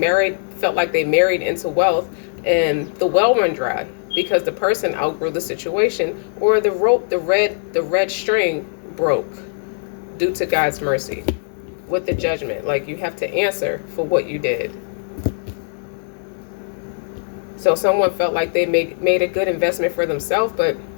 felt like they married into wealth, and the well run dry because the person outgrew the situation, or the rope, the red string broke due to God's mercy with the judgment. Like, you have to answer for what you did. So someone felt like they made a good investment for themselves, but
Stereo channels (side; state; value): right; silent; digital silence